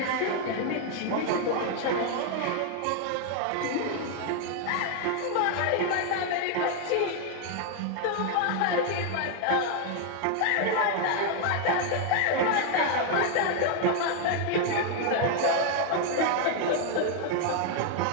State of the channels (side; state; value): both; different; correlation 0.00